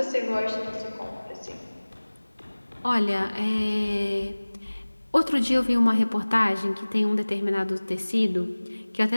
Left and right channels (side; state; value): both; inverted; correlation -1.00